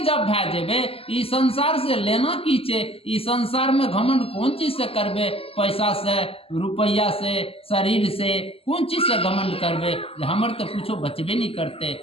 भै जेबे, ई संसार से लेना की छे, ई संसार में घमंड कौन चीज से करबे, पैसा से, रुपया से, शरीर से, कौन चीज से घमंड करबे। हमर तो कुछो बचबे नहीं करते,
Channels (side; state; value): right; late; 0.28 ms